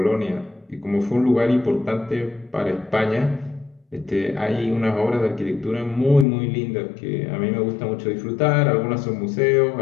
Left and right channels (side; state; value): right; drops out; at 6.2 s